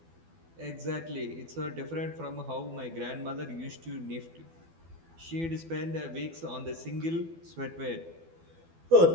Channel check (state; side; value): late; left; 12 ms